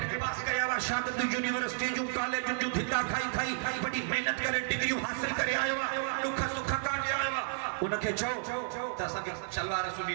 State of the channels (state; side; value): silent; left; digital silence